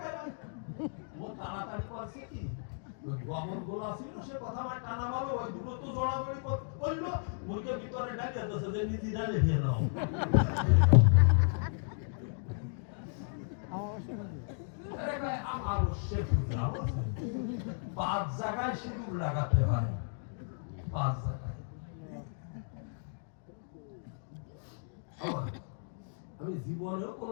ও তাড়াতাড়ি করছে কি গোবর গোলা ছিল সে কথা আমার টানা বলো ওই দুটো তো জড়াজড়ি করলো ওইকে ভিতরে ডালে দিয়েছে যে নিজে ডালে খেয়ে নাও আমার পাঁচ জায়গায় সিঁদুর লাগাতে হয় পাঁচ জায়গায় আমি জীবনেও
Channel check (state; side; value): silent; right; digital silence